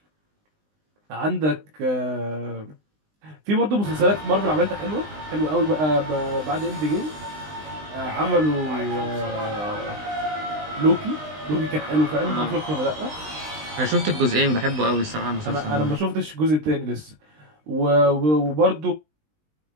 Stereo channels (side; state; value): left; late; 20 ms